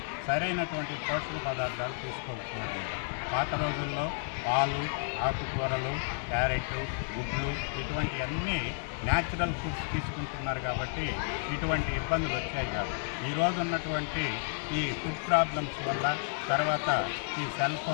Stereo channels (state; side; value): silent; right; digital silence